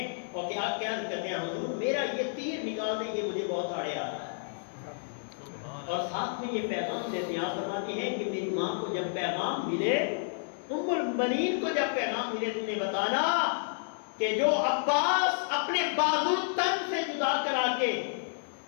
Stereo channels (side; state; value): right; silent; digital silence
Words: اور کیا کہتے ہیں حضور میرا یہ تیر نکال دیں، یہ مجھے بہت آڑے آ رہا ہے، اور ساتھ میں یہ پیغام دیتے ہیں۔ آپ فرماتے ہیں کہ میری ماں کو جب پیغام ملے، ام البنین کو جب پیغام ملے، تم نے بتانا کہ جو عباس اپنے بازو تن سے جدا کرا کے